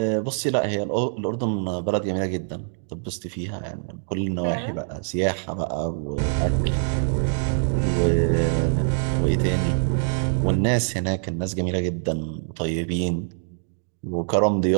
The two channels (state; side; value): silent; left; digital silence